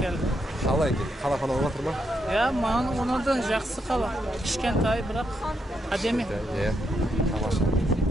Қалай екен? Қала falan отыр ма? Ya mağın ona da жақсы қала. Кішкентай бірақ әдемі. Иә. Тамаша.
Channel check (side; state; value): both; normal; correlation 0.80